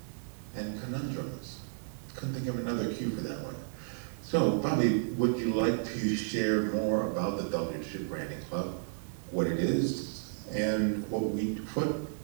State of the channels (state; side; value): silent; left; digital silence